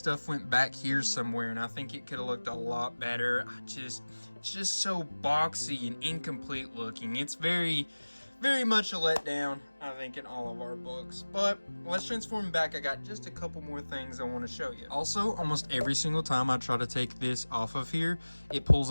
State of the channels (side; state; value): both; inverted; correlation -1.00